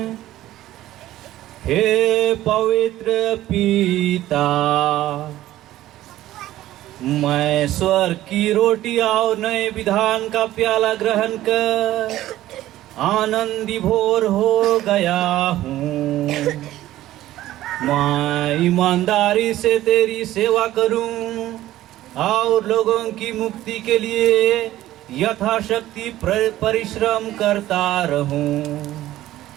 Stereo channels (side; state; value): left; quieter; 14.6 dB